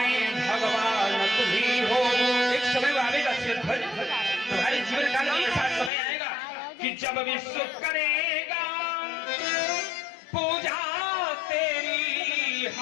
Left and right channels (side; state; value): right; drops out; at 5.9 s